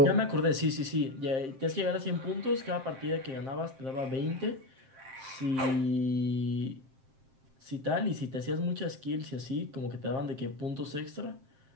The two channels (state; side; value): late; left; 7.6 ms